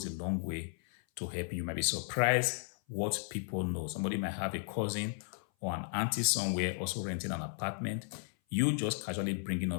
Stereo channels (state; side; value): silent; right; 55 dB below the other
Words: a long way to help you. You might be surprised what people know. Somebody might have a cousin or an auntie somewhere also renting an apartment. You just casually bringing